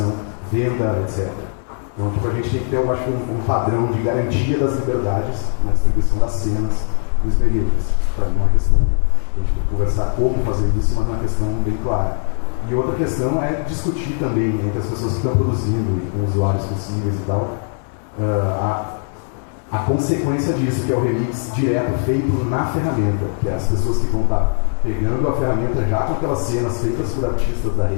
venda, etc. Então, a gente tem que ter, eu acho, um padrão de garantia das liberdades na distribuição das cenas dos períodos. Para mim é uma questão, a gente tem que conversar como fazer isso, mas é uma questão bem clara. E outra questão é discutir também entre as pessoas que estão produzindo e com usuários possíveis e tal, a consequência disso, que é o remix direto feito na ferramenta, que é as pessoas que vão estar pegando a ferramenta já com aquelas cenas feitas por artistas da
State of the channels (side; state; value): right; silent; 61 dB below the other